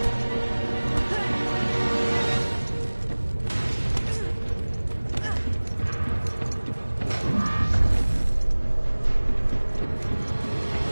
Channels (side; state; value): both; inverted; correlation -1.00